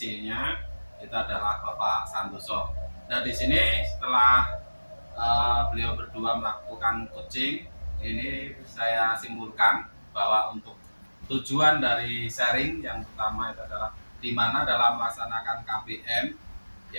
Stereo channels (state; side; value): inverted; both; correlation -1.00